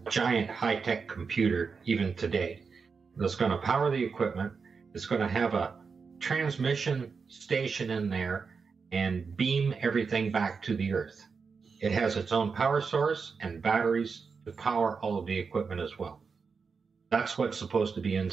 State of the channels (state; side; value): quieter; left; 5.3 dB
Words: giant high-tech computer even today that's going to power the equipment. It's going to have a transmission station in there and beam everything back to the earth. It has its own power source and batteries to power all of the equipment as well. That's what's supposed to be